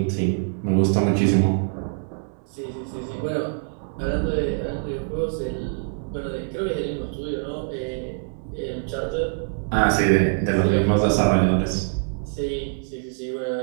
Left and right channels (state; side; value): silent; left; 62 dB below the other